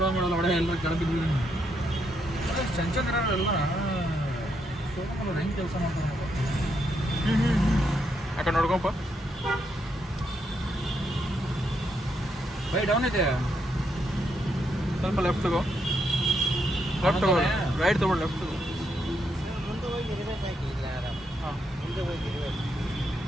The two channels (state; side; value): normal; both; correlation 0.78